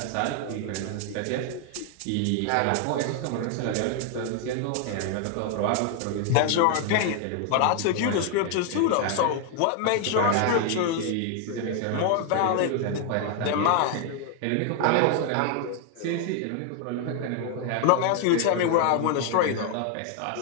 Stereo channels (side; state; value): both; different; correlation 0.00